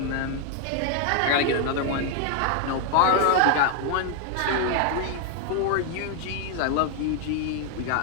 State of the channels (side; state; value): both; different; correlation 0.01